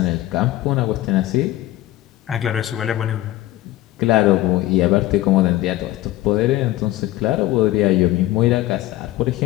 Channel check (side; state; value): right; quieter; 15.7 dB